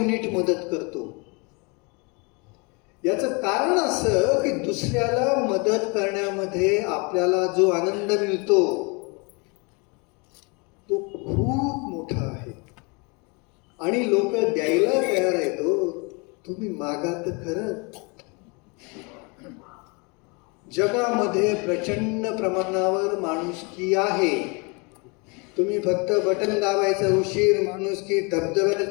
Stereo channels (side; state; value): right; quieter; 30.6 dB